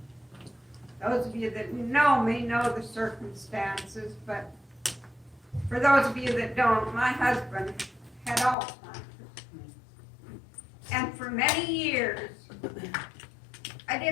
Those of you that know me know the circumstances, but for those of you that don't, my husband had Alzheimer's. And for many years, I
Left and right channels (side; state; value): right; drops out; at 8.6 s